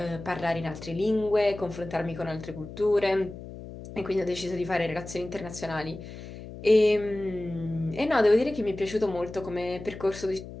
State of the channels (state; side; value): noise; left; hum, 13 dB below the sound